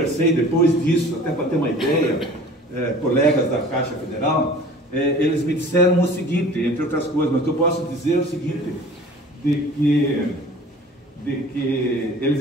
depois disso, até para ter uma ideia, colegas da Caixa Federal, eles me disseram o seguinte, entre outras coisas, mas eu posso dizer o seguinte, de que eles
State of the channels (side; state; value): both; normal; correlation 0.45